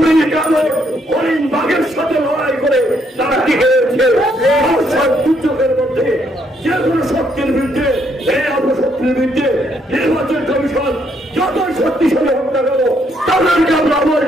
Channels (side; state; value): both; normal; correlation 0.72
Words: কামড় হরিণ বাঘের সাথে লড়াই করে তারা টিকে রয়েছে। দুর্যোগের মধ্যে যে কোনো শক্তির বিরুদ্ধে, এই অপশক্তির বিরুদ্ধে নির্বাচন কমিশন যতই শক্তিশালী হোক না কেন তাদেরকে আমরা